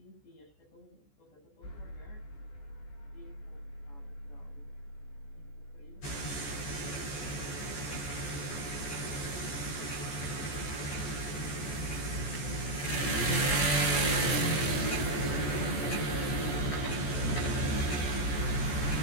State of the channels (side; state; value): right; late; 14 ms